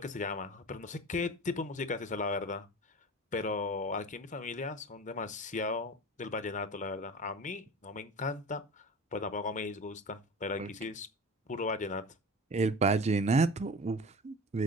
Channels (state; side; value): normal; both; correlation 0.35